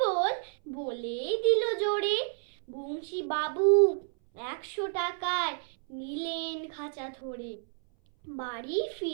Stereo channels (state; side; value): silent; left; 58 dB below the other